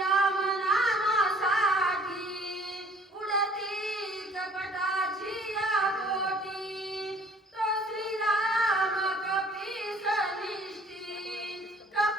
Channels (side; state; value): both; normal; correlation 0.55